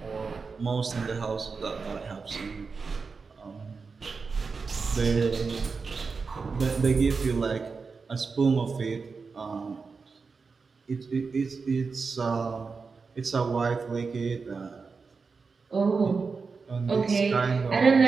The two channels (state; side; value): quieter; left; 4.8 dB